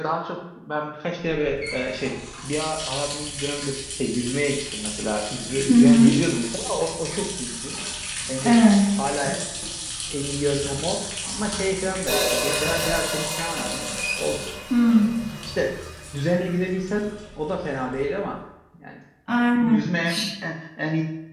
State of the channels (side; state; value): both; identical; correlation 1.00